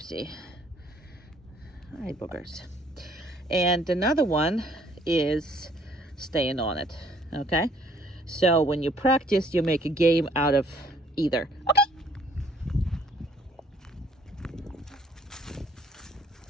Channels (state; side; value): normal; both; correlation 0.62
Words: hi boogers. And another one is staying on it. Okay. So when you practice, you make a game out of either. Okay.